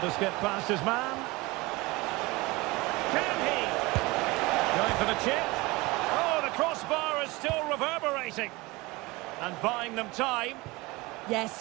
skip past his man. Can he? Going for the chip. Crossbar is still reverberating and buying them time. Yeah,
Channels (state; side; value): quieter; left; 22.8 dB